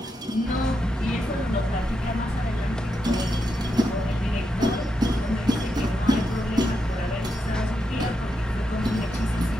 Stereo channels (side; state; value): both; normal; correlation 0.84